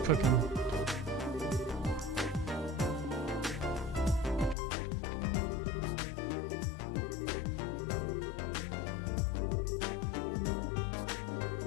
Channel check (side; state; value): right; drops out; at 4.5 s